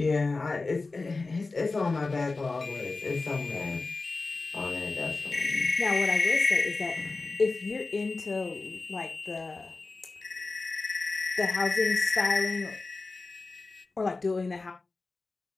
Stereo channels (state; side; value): quieter; right; 3.7 dB